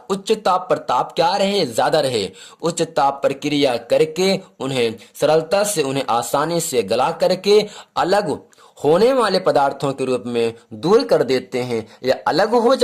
उच्च ताप पर, ताप क्या रहे, ज्यादा रहे, उच्च ताप पर क्रिया करके उन्हें सरलता से, उन्हें आसानी से गला करके अलग होने वाले पदार्थों के रूप में दूर कर देते हैं या अलग हो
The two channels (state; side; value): identical; both; correlation 1.00